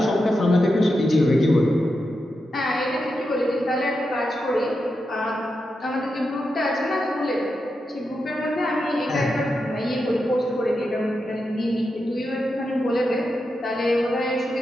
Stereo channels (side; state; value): both; normal; correlation 0.87